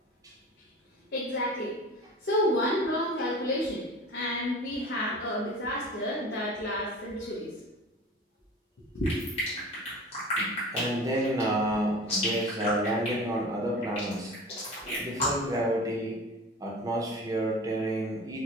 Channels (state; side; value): normal; both; correlation 0.38